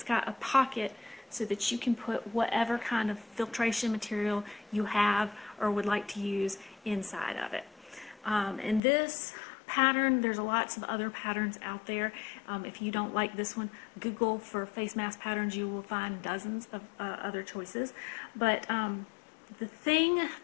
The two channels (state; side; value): drops out; right; at 8.8 s